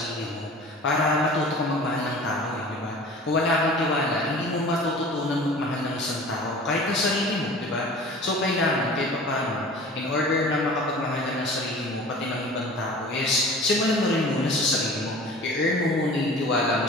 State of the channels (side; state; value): both; normal; correlation 0.42